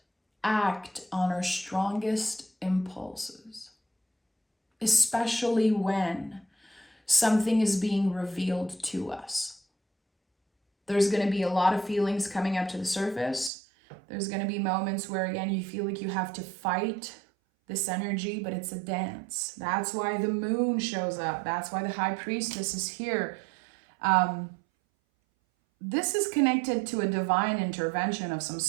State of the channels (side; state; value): left; drops out; at 13.5 s